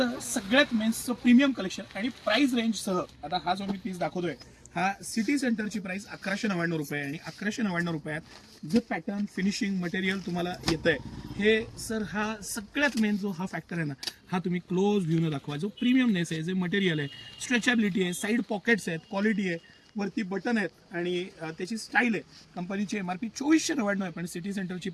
सगळ्यात मेन्सचं प्रीमियम कलेक्शन आणि प्राइस रेंजसह आता हा जो मी पीस दाखवतोय हा सिटी सेंटरची प्राइस 1199 रुपये आणि 1199 रुपयात जे पॅटर्न फिनिशिंग मटेरियल तुम्हाला येतंय हे सर हा सगळ्यात मेन जो हा फॅक्टर आहे ना हा तुम्ही क्लोज व्ह्यूनं दाखवा. जो प्रीमियमनेस आहे, जे मटेरियल आहे, स्ट्रेचॅबिलिटी आहे, साईड पॉकेट्स आहेत, क्वालिटी आहे, वरती बटन आहेत आणि त्याची स्टाईल आहे. कंपनीची MRP 2499 आहे पण सिटी सेंटरची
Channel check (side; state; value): both; identical; correlation 1.00